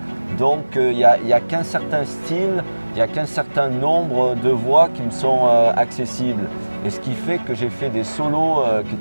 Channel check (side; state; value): both; inverted; correlation -1.00